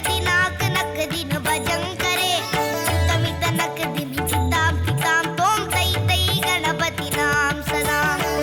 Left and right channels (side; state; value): both; identical; correlation 1.00